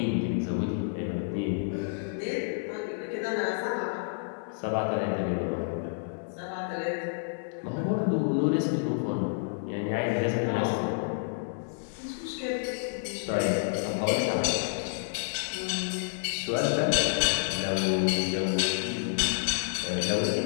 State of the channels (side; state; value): right; silent; digital silence